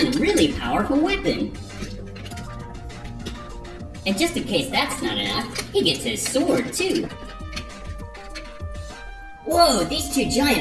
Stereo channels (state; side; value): identical; both; correlation 1.00